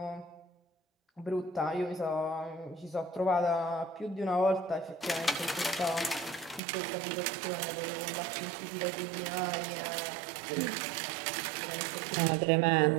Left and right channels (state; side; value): drops out; left; at 6.6 s